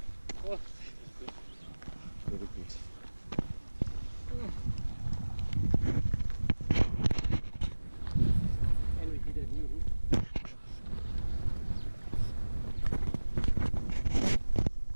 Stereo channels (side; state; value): both; inverted; correlation -1.00